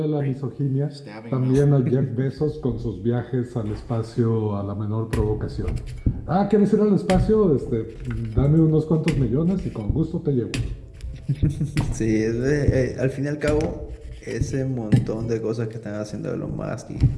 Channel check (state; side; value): identical; both; correlation 1.00